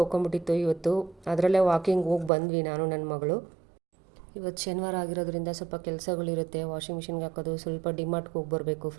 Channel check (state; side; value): drops out; left; at 2.3 s